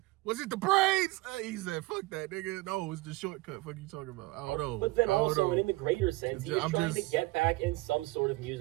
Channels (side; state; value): left; quieter; 21.4 dB